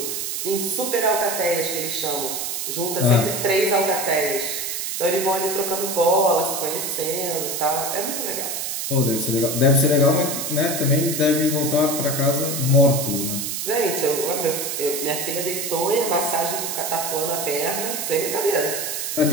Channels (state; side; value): noise; right; hiss, 3 dB below the sound